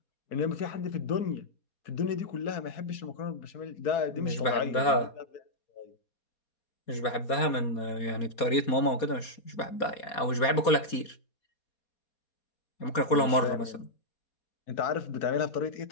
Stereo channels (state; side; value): late; right; 4.2 ms